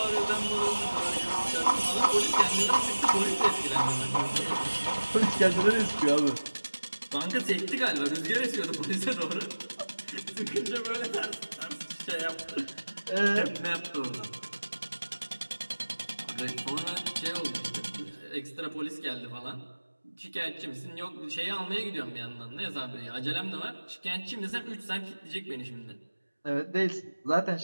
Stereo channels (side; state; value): both; inverted; correlation -1.00